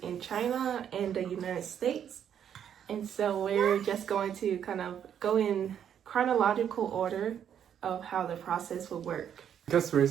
in China and the United States. And so we're just going to kind of go in chronological order of how the process will work. Because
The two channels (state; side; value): quieter; left; 9.0 dB